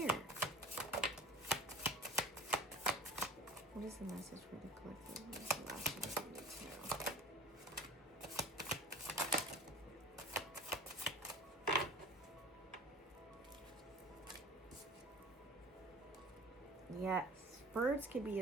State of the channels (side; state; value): both; normal; correlation 0.43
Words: What is the message for the collective? What is the last thing we need to know? Yes, birds could be